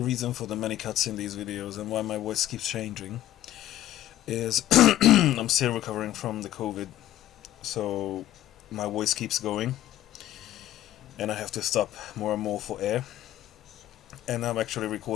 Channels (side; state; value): right; quieter; 13.5 dB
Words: reason for the many cuts in these videos and why my voice keeps changing is I'm still recovering from the COVID, so my voice keeps going and I have to stop more and more for air, and I'm actually